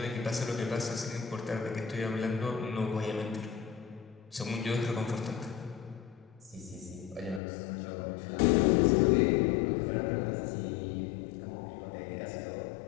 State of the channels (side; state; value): right; drops out; at 7.4 s